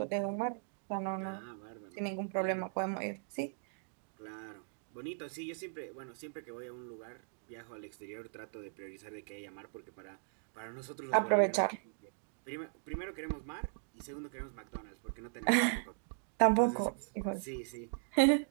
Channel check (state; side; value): silent; left; digital silence